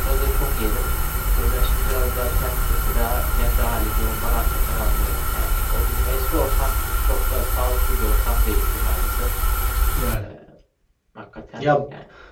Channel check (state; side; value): identical; both; correlation 1.00